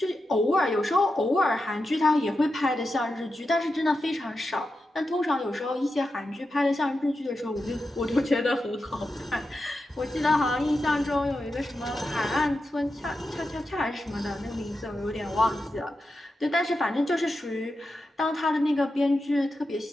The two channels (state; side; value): normal; both; correlation 0.89